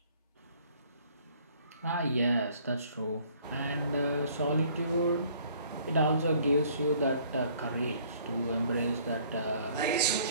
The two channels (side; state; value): both; inverted; correlation -0.58